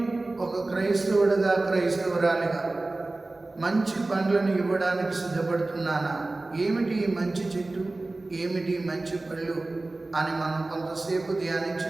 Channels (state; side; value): quieter; left; 3.1 dB